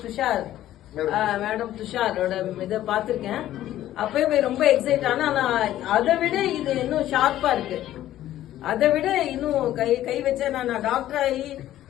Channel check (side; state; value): right; quieter; 13.3 dB